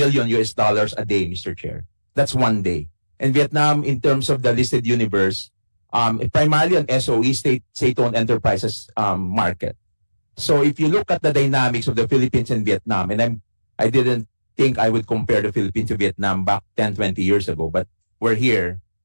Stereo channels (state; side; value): inverted; both; correlation -1.00